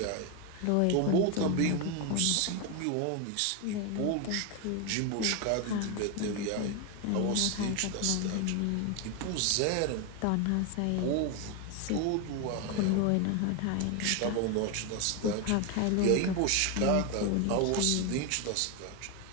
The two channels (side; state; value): both; different; correlation 0.01